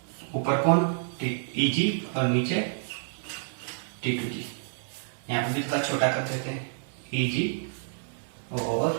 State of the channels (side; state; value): left; silent; digital silence